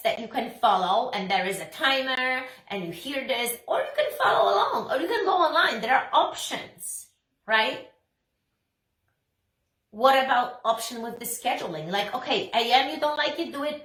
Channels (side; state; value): both; identical; correlation 1.00